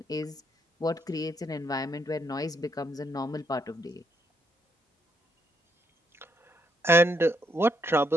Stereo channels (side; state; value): both; normal; correlation 0.75